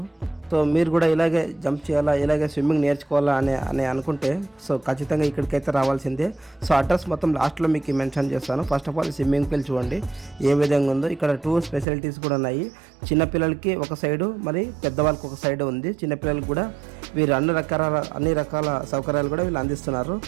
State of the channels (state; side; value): drops out; left; at 11.9 s